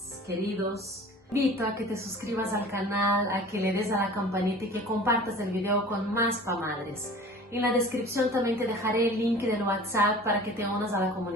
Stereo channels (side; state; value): both; normal; correlation 0.43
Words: queridos, invito a que te suscribas al canal, a que le des a la campanita y que compartas el video con más pamadres. En la descripción también te dejaré el link del WhatsApp para que te unas a la